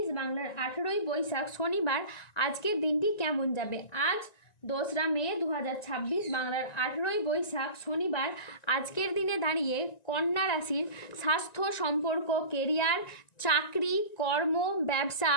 বাংলার 18ই বৈশাখ শনিবার আজকের দিনটি কেমন যাবে। আজ 2রা মে 2026 বাংলার 18ই বৈশাখ শনিবার আজকের দিনে দাঁড়িয়ে কন্যা রাশির স্বাস্থ্য, সম্পর্ক, কেরিয়ার, চাকরি, কর্ম, ব্যবসা,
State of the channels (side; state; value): right; late; 1.9 ms